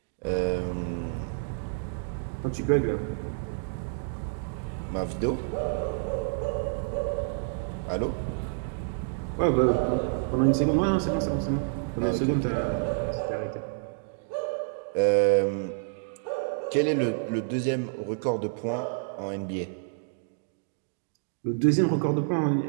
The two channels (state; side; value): silent; left; digital silence